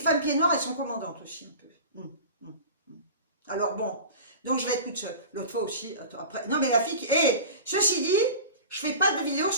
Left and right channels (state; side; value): inverted; both; correlation -0.35